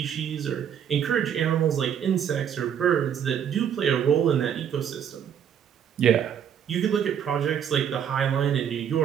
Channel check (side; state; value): left; quieter; 8.7 dB